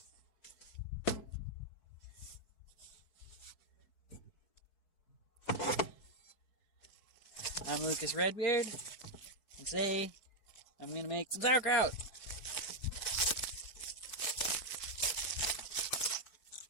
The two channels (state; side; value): late; right; 4.6 ms